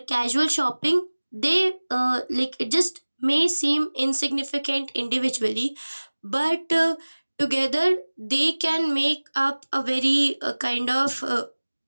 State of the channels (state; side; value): inverted; both; correlation -1.00